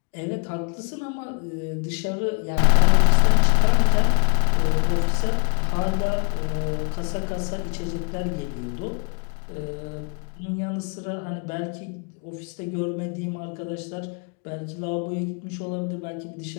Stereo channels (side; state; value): right; quieter; 36.5 dB